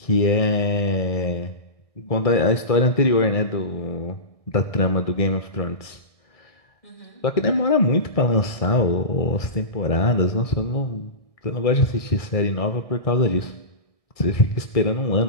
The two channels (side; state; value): right; late; 1.6 ms